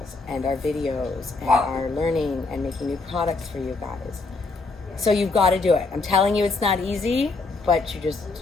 and our videos and our learning and making new products for you guys. So you've got to do it. I'm telling you, it's not easy, but you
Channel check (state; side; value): quieter; right; 3.8 dB